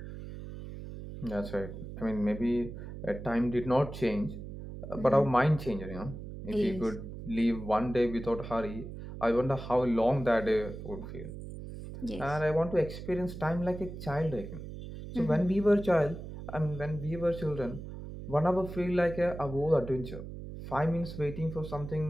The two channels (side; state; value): right; noise; hum, 10 dB below the sound